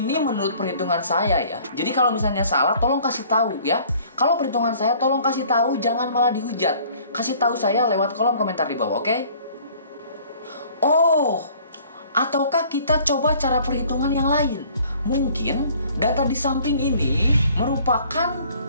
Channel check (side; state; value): both; inverted; correlation -0.54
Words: menurut perhitungan saya ya. Jadi kalau misalnya salah, tolong kasih tahu ya. Kalau perhitungan saya, tolong kasih tahu. Jangan malah dihujat. Kasih tahu saya lewat kolom komentar di bawah, oke? Oh, ataukah kita coba cara perhitungan yang lain? Mungkin data di samping ini merupakan